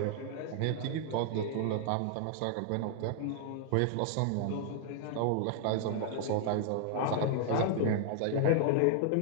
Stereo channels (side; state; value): both; different; correlation 0.00